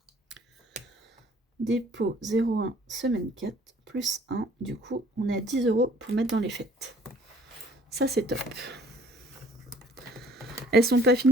Dépôt 0,1, semaine 4, plus 1. Du coup, on est à 10 € pour mettre dans les fêtes. Ça, c'est top. Elles sont pas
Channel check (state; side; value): normal; both; correlation 0.56